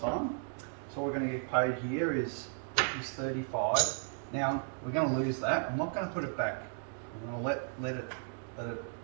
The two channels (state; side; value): silent; left; 55 dB below the other